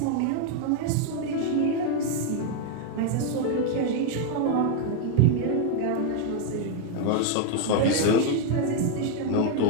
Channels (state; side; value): different; both; correlation 0.00